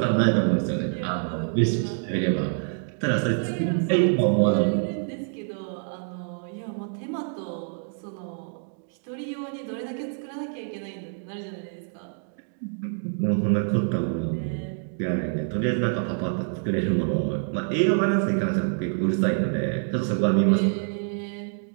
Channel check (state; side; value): silent; left; 61 dB below the other